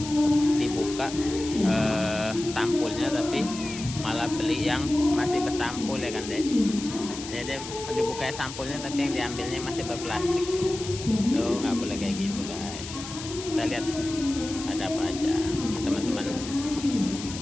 dibuka sampulnya, tapi malah beli yang masih bersampul ya kan deh. Jadi dibuka sampulnya tapi yang diambilnya masih berplastik. Tuh nggak boleh kayak gitu guys. Kita lihat ada apa aja. Teman-teman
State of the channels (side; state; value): left; noise; hiss, 10 dB below the sound